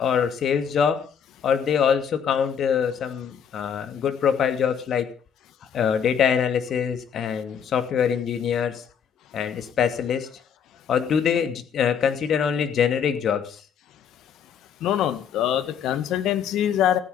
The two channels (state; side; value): quieter; right; 7.7 dB